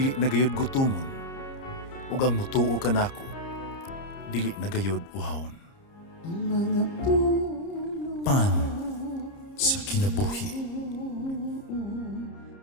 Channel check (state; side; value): late; right; 30 ms